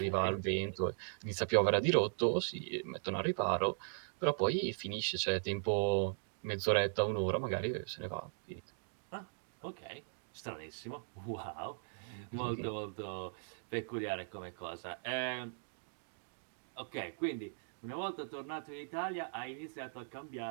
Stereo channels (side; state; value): left; silent; digital silence